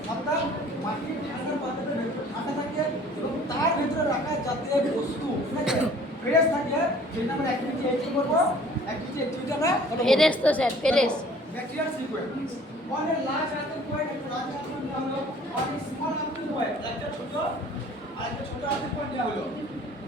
অর্থাৎ মাটির ঠান্ডা পাত্রটা ঠান্ডা থাকে এবং তার ভিতরে রাখা জাতীয় বস্তু ফ্রেশ থাকে, যেটা আমরা অ্যাক্টিভিটি এইটি করবো। অ্যাক্টিভিটি আমরা ফেরেস তো স্যার, ফেরেস। Bacterial sequence on a large earthen point, একটা লার্জ আর্থেন দেওয়া হলো, on a small earthen point একটা ছোট আর একটা ছোট আর্থেন পয়েন্ট দেওয়া হলো।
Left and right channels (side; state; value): both; normal; correlation 0.51